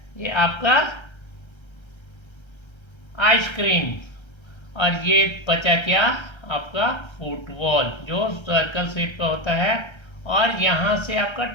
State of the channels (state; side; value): late; right; 1.3 ms